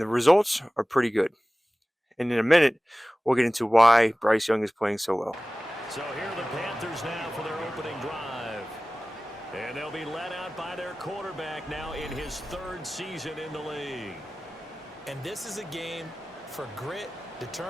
results are pretty good. And in a minute, we'll get into why Bryce Young is playing so well. So here are the Panthers now for their opening drive. And they'll be led out by their quarterback now in his 3rd season in the league. And this is a game for grit,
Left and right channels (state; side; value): normal; both; correlation 0.97